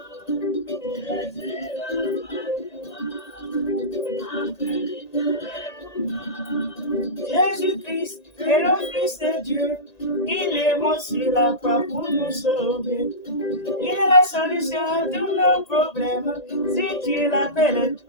Jésus-Christ est le Fils de Dieu. Il est mort sur la croix pour nous sauver. Il est la solution à tous nos problèmes. Si tu l'appelles,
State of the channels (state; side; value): late; right; 1.9 ms